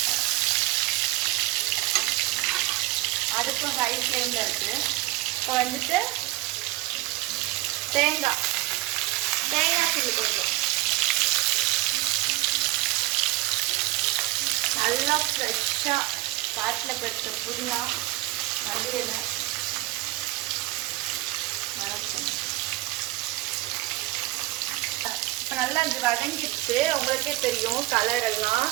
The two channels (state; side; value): quieter; left; 19.2 dB